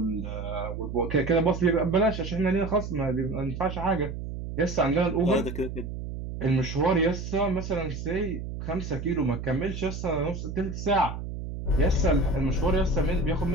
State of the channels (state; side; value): noise; right; hum, 7 dB below the sound